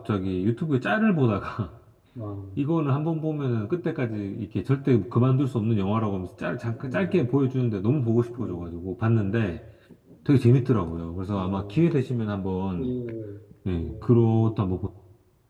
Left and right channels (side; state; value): both; identical; correlation 1.00